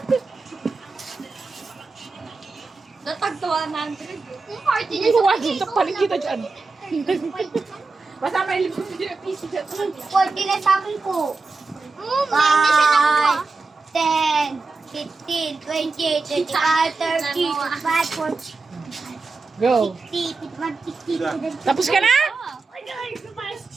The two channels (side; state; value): left; quieter; 3.9 dB